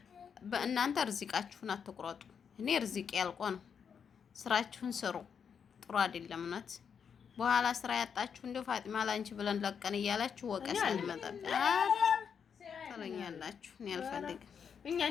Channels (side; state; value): right; quieter; 7.0 dB